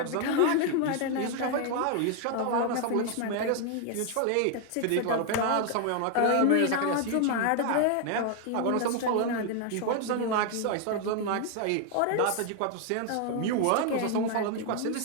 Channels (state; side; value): different; both; correlation 0.00